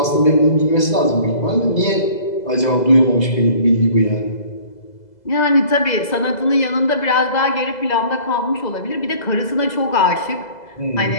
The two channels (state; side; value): late; right; 2.0 ms